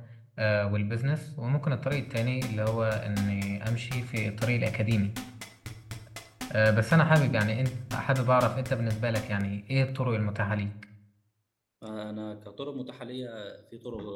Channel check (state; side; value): identical; both; correlation 1.00